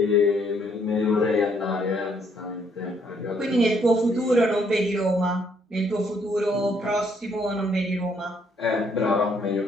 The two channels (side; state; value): both; normal; correlation 0.69